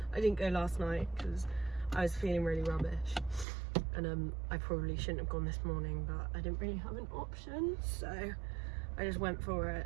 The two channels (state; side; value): drops out; left; at 3.5 s